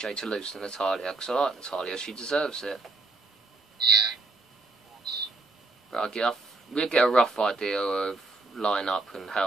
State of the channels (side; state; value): left; quieter; 3.3 dB